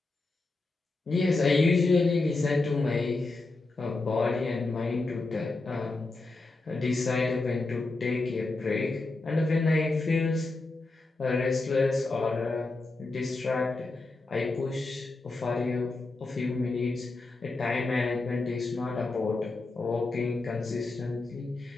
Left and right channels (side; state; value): right; quieter; 3.3 dB